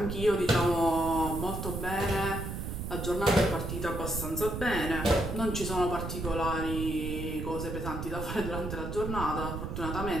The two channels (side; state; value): right; noise; rumble, 5 dB below the sound